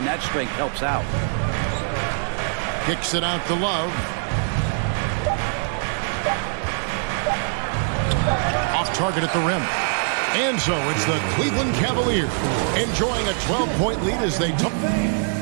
that strength helps out. Kicks it out to Love. Off target at the rim. And so it's the Cleveland Cavaliers enjoying a 12-point lead as they took.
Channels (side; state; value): left; silent; 63 dB below the other